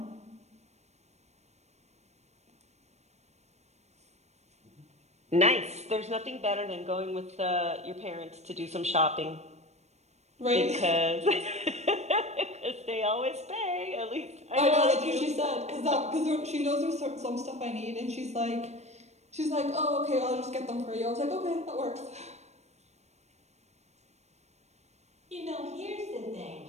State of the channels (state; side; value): late; left; 0.32 ms